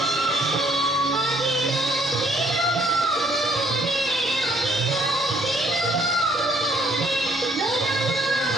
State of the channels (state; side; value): normal; both; correlation 0.64